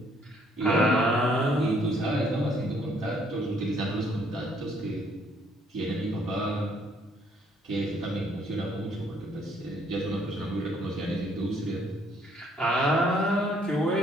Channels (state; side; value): normal; both; correlation 0.66